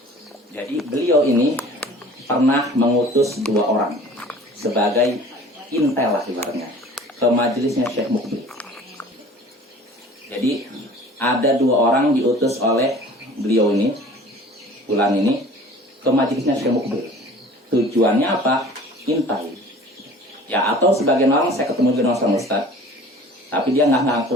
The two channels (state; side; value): normal; both; correlation 0.46